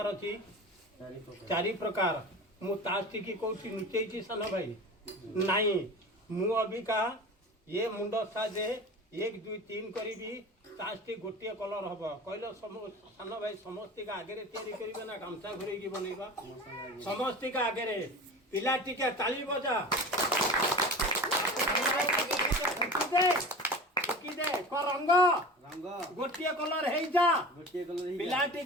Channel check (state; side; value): normal; both; correlation 0.33